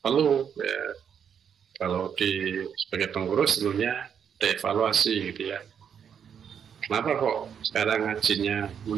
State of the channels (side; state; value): left; quieter; 7.9 dB